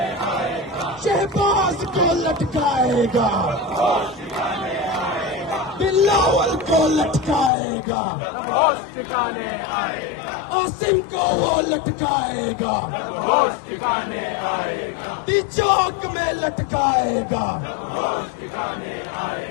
شہباز کو لٹکائے گا بلاول کو لٹکائے گا ہوش ٹھکانے آئے گا، عاصم کو وہ لٹکائے گا ہوش ٹھکانے آئے گا، چوک میں لٹکائے گا ہوش ٹھکانے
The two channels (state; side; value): drops out; right; at 7.5 s